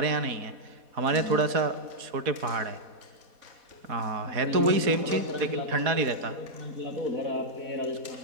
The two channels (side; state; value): left; late; 4.1 ms